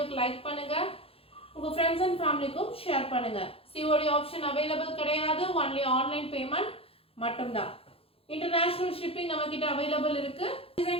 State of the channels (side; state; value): right; late; 0.27 ms